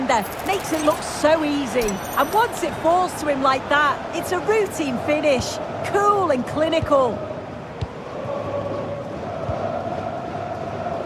Makes it look so easy. And once it falls to him like that, it's a routine finish. Cool and clinical.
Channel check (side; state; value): both; identical; correlation 1.00